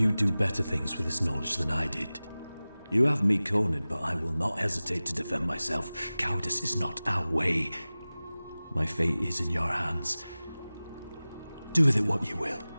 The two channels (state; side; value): inverted; both; correlation -0.98